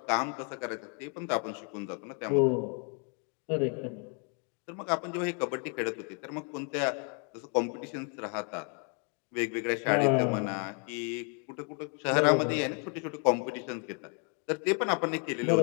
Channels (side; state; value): right; quieter; 38.7 dB